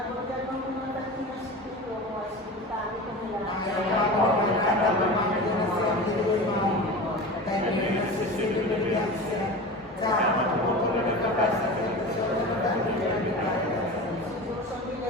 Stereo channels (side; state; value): both; normal; correlation 0.31